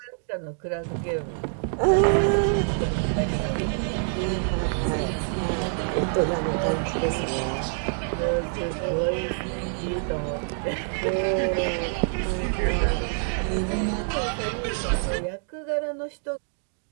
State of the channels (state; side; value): silent; left; 61 dB below the other